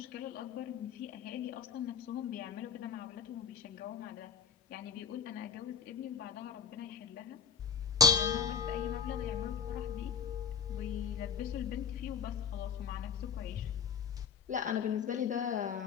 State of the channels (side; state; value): right; quieter; 7.2 dB